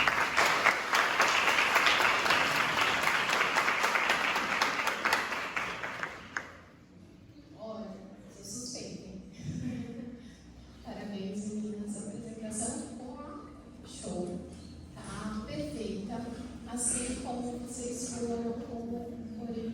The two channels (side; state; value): both; identical; correlation 1.00